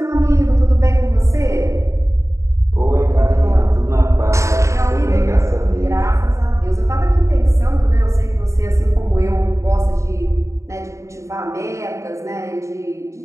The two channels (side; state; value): left; late; 0.14 ms